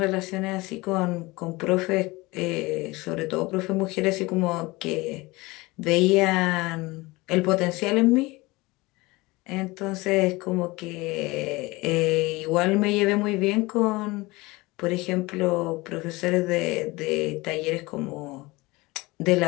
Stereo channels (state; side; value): quieter; right; 22.3 dB